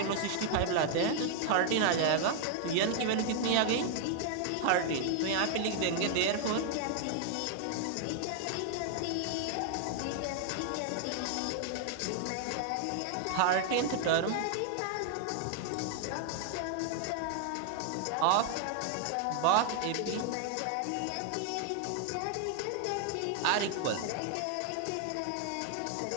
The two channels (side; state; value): both; different; correlation 0.00